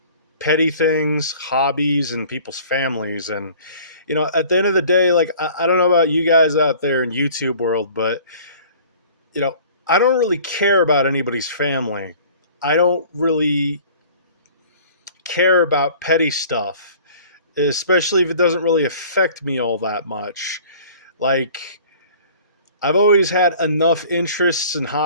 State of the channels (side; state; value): both; inverted; correlation -0.48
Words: petty things, hobbies, and people's families. And, at the end of the day, like, I don't know about you guys out there in YouTube world, but, I don't really care about anybody's family. I don't really care about petty stuff, especially if it doesn't really affect me all that much. Like, I've always had enough interests and